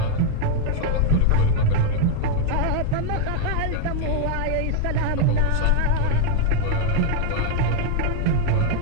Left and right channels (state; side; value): different; both; correlation 0.00